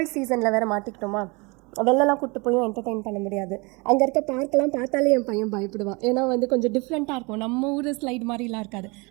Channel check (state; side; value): quieter; left; 28.0 dB